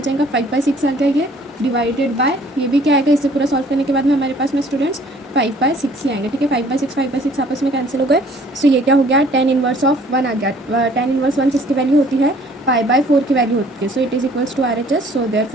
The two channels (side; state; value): both; normal; correlation 0.56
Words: जाएगा, 5/6 आ गया ये, डिवाइडेड बाय ये भी क्या आएगा, इससे पूरा सॉल्व करने के बाद में हमारे पास में स्टूडेंट्स 5/6 ही आएंगे। ठीक है, 5/6 आपस में कैंसिल हो गए। सो ये क्या हो गया, tan इनवर्स ऑफ 1 आ गया। tan इनवर्स 1 किसकी वैल्यू होती है, π/4 की वैल्यू होती है। So it is equals to RHS। So